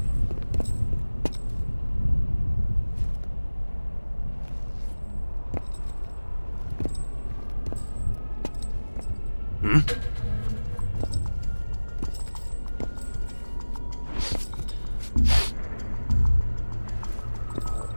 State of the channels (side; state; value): both; inverted; correlation -1.00